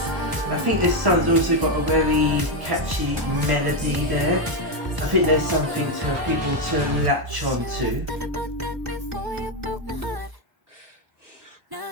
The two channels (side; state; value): left; late; 1.0 ms